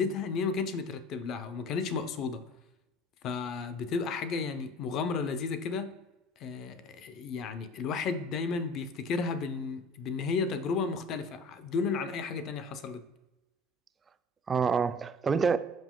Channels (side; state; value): both; normal; correlation 0.44